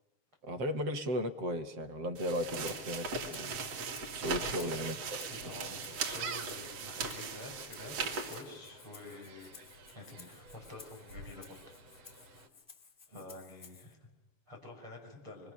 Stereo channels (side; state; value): left; late; 7.7 ms